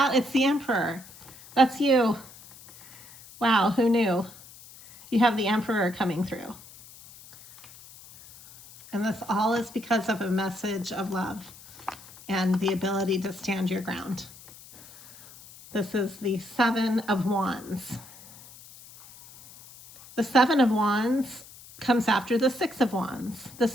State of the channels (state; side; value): noise; left; hiss, 20 dB below the sound